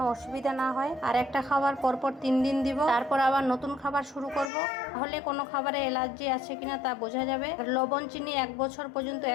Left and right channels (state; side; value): drops out; right; at 4.5 s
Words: অসুবিধা না হয়। আর একটা খাবার পরপর 3 দিন দিব, তারপর আবার নতুন খাবার শুরু করব। তাহলে কোনো খাবারে অ্যালার্জি আছে কিনা তা বোঝা যাবে। লবণ চিনি 1 বছর পর্যন্ত